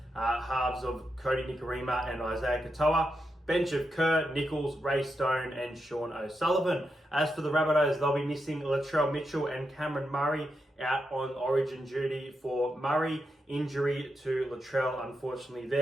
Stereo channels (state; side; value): normal; both; correlation 0.85